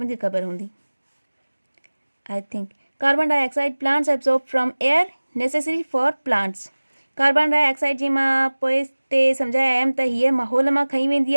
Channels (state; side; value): inverted; both; correlation -1.00